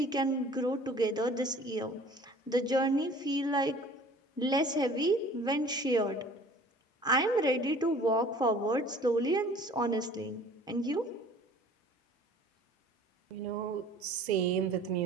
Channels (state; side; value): normal; both; correlation 0.49